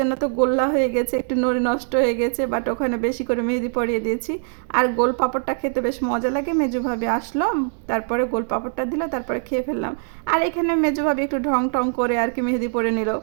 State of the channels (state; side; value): silent; left; digital silence